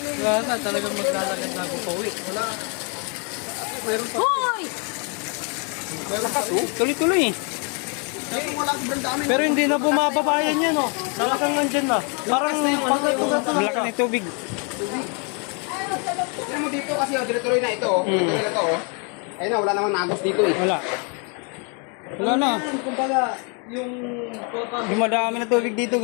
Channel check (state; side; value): quieter; right; 36.4 dB